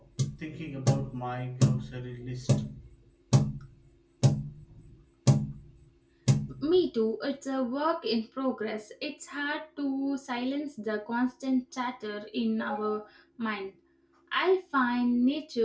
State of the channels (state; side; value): identical; both; correlation 1.00